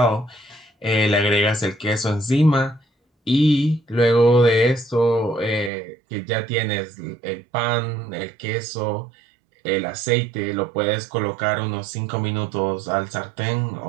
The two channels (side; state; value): left; drops out; at 5.7 s